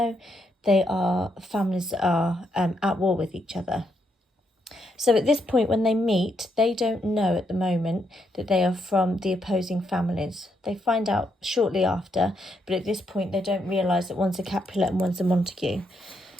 they are families that are at war with each other. So at this point, when they meet, they don't know at the moment that they are from the opposing families. They find out shortly after, but at this point, they don't realise that one's a Capulet and one's a Montague.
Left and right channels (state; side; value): normal; both; correlation 0.78